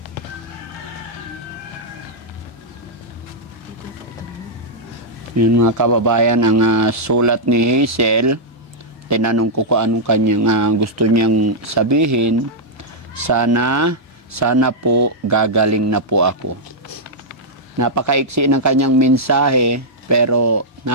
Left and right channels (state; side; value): normal; both; correlation -0.07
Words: Yun mga kababayan, ang sulat ni Hazel. Tinanong ko kung anong kanyang gusto niyang sabihin. Sana po gagaling na po ako. Napakaiksi ng kanyang mensahe pero